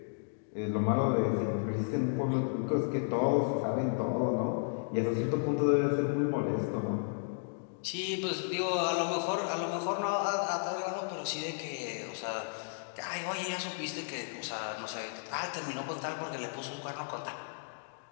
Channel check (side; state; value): right; silent; digital silence